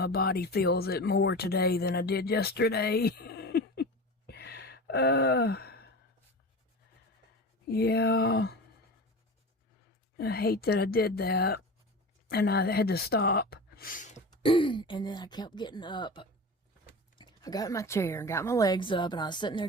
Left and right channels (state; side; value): normal; both; correlation 0.31